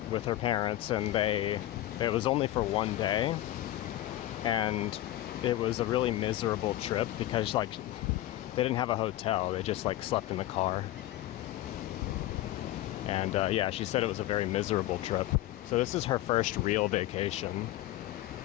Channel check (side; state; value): right; quieter; 14.8 dB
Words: with her parents, and it was only for one day, and it was a really miserable trip because like they didn't have a hotel, they just like slept in the car. And yeah, she said it was a very miserable trip. So this is her first real vacation.